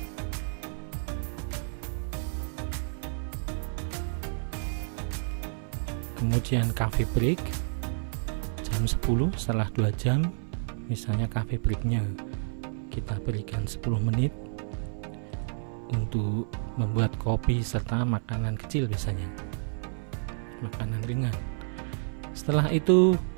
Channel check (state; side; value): silent; left; 56 dB below the other